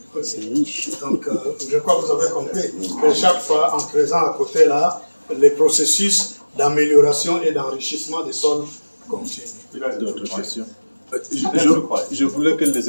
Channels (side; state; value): both; inverted; correlation -1.00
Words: donc je crois que vous avez compris que chaque fois, en creusant à côté là, les processus d'amélioration et d'enrichissement des sols continuent. D'autres questions? Je voulais que les